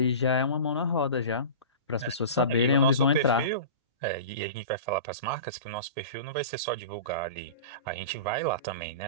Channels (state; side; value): inverted; both; correlation -0.34